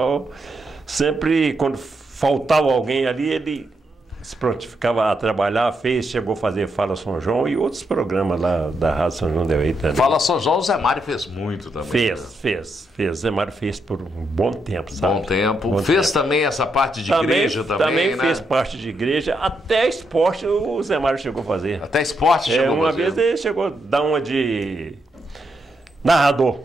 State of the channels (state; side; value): normal; both; correlation 0.80